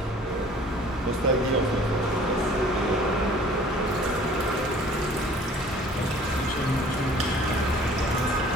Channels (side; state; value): both; normal; correlation 0.51